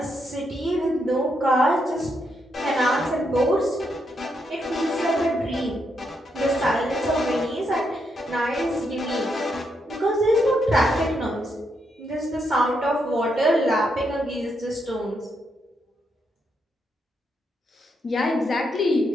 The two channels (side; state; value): both; normal; correlation 0.80